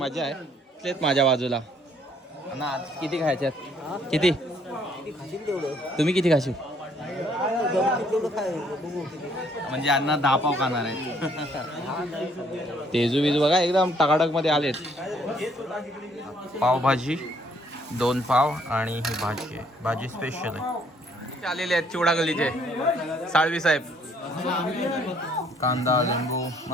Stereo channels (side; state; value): both; normal; correlation 0.65